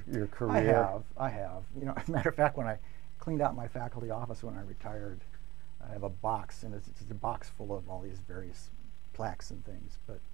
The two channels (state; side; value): quieter; left; 17.6 dB